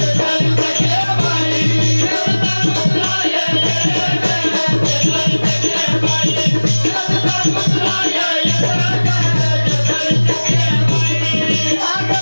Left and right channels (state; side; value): inverted; both; correlation -1.00